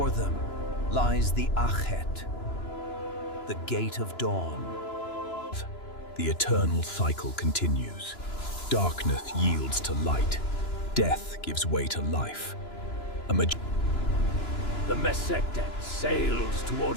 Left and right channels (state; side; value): late; right; 2.9 ms